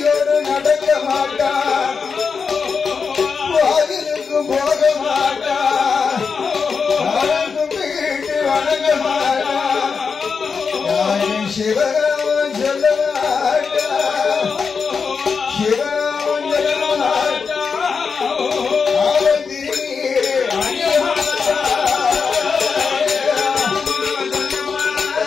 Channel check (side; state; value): right; quieter; 5.5 dB